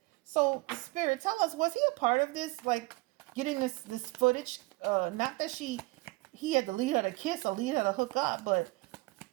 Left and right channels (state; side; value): quieter; left; 23.3 dB